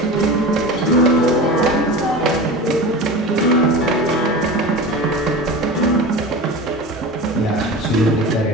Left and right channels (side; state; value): both; normal; correlation 0.30